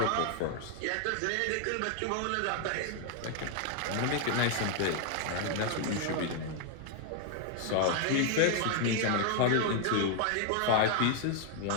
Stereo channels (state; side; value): different; both; correlation 0.00